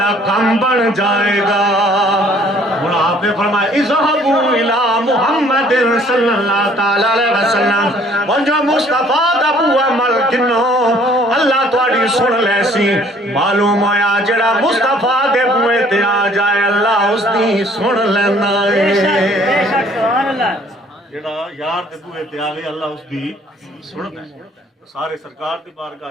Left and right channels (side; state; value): both; normal; correlation 0.58